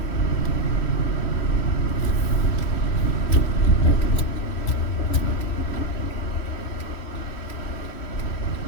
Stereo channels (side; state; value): right; late; 3.1 ms